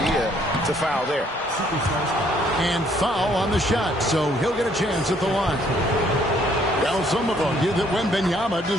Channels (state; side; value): normal; both; correlation 0.65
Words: to foul there. And foul on the shot, so he'll get a chance at the line. Well, some have argued that Wembanyama